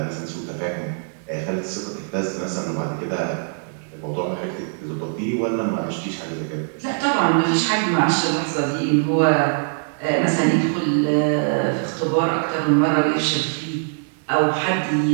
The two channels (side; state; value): left; silent; 61 dB below the other